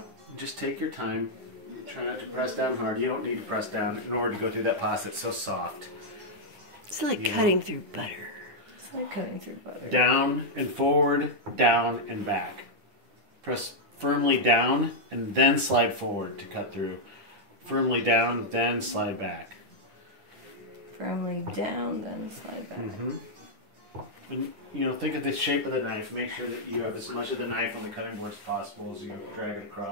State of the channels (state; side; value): late; left; 10 ms